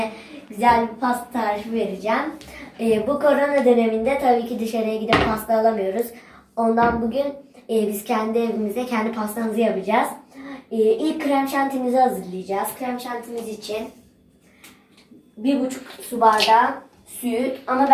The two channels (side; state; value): both; identical; correlation 1.00